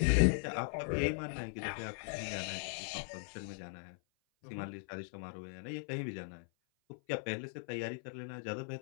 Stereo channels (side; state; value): right; silent; 52 dB below the other